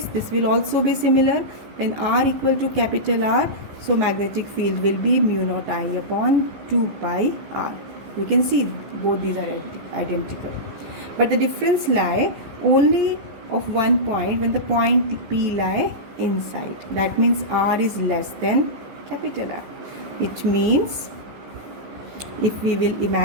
this will also be similar. Then R equal to capital R, so magnetic field will be mu naught I upon 2 pi R. You can see both these are identical. But the difference lie only of one point, when the point P lie inside. That means R is less than capital R. It means if we will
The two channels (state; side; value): late; left; 15 ms